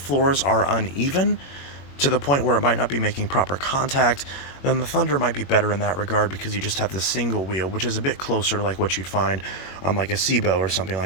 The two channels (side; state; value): right; late; 21 ms